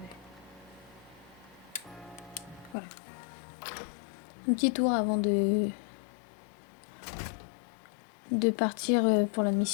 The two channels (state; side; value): drops out; right; at 2.8 s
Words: Voilà. Un petit tour avant de partir pour la